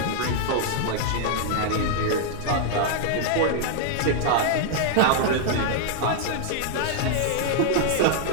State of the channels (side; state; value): both; different; correlation -0.01